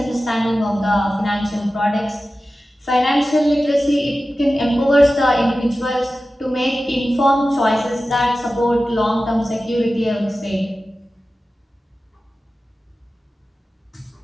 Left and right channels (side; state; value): both; normal; correlation 0.95